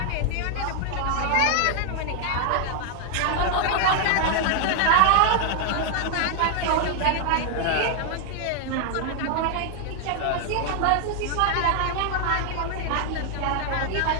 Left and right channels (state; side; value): different; both; correlation 0.00